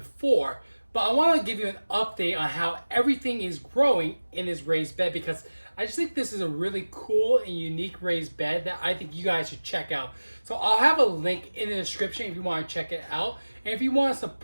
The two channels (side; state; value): both; inverted; correlation -1.00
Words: but I want to give you an update on how everything is growing in this raised bed because I just think this is a really cool and unique raised bed that I think you guys should check out. So I'll have a link in the description if you want to check it out. And if you want to